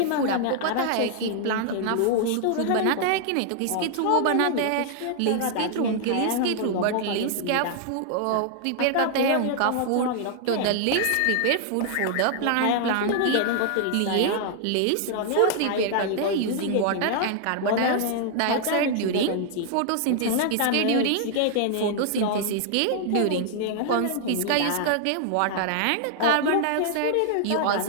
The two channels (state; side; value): different; both; correlation 0.00